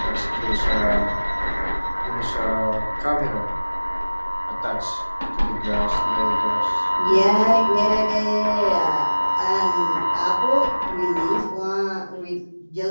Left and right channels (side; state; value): both; inverted; correlation -1.00